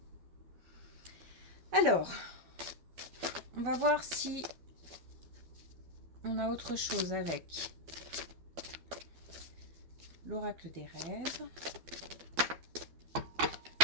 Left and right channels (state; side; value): late; left; 12 ms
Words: Alors, on va voir si on a autre chose avec l'oracle des rêves.